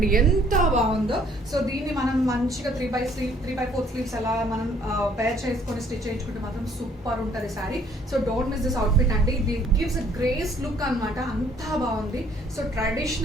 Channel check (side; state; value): both; normal; correlation 0.62